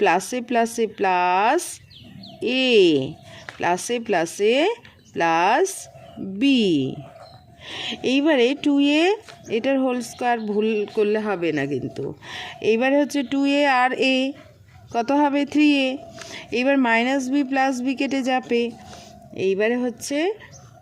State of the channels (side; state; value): both; identical; correlation 1.00